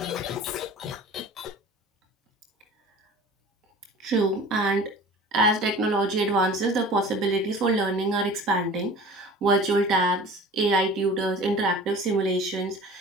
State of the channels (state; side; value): normal; both; correlation 0.42